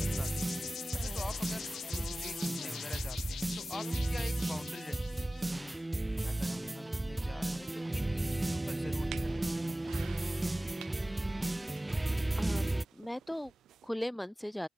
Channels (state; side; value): normal; both; correlation 0.97